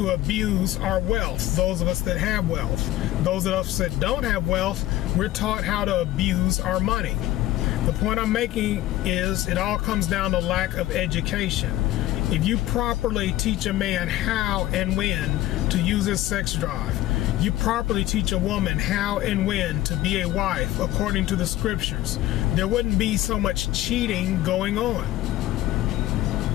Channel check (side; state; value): right; quieter; 15.2 dB